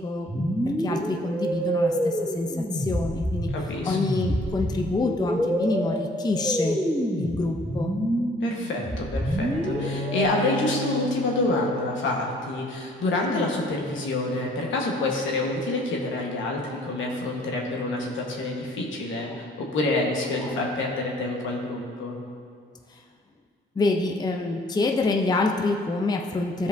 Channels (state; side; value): normal; both; correlation 0.57